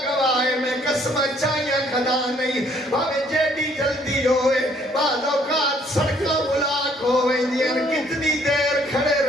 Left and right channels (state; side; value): normal; both; correlation 0.63